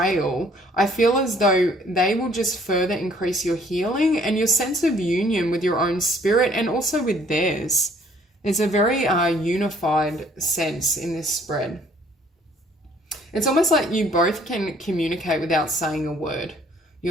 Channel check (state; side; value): normal; both; correlation 0.60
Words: I feel as though they will just further increase your healing and your sense of union with your own spirit and also with theirs. It's a very unified sense in this spread. It's almost like you both can communicate without saying a word.